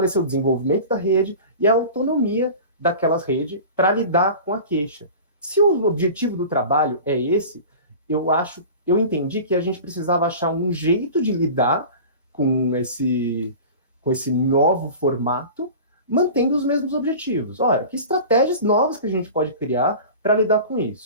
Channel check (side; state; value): both; inverted; correlation -0.37